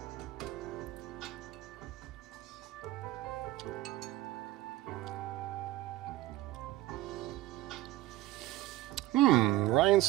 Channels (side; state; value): left; quieter; 15.8 dB